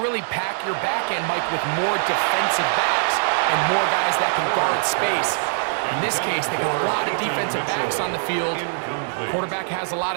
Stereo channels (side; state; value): left; silent; digital silence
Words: pack your back end, Mike, with more defensive backs and more guys that can guard space? In this case, they got a lot of defensive backs on the field. Quarterback has a lot